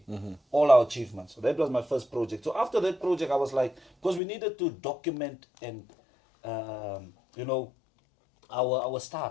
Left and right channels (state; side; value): drops out; right; at 4.2 s